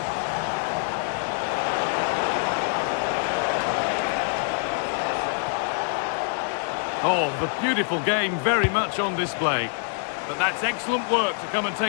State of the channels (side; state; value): right; silent; digital silence